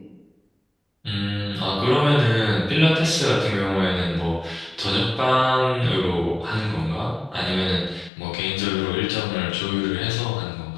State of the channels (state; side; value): drops out; right; at 8.1 s